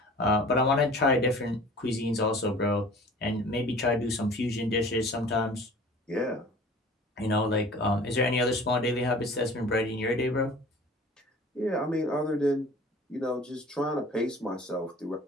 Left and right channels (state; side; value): normal; both; correlation 0.45